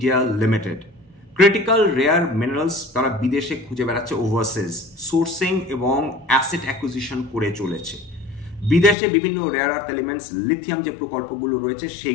limited. Critical rare minerals তারা বিদেশে খুঁজে বেড়াচ্ছে, ওভারসিজ সোর্সিং এবং অ্যাসেট অ্যাকুইজিশন করে চলেছে। বিদেশে বিভিন্ন রেয়ার আর্থ এলিমেন্টস, লিথিয়াম যে প্রকল্পগুলো রয়েছে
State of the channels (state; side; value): drops out; right; at 9.0 s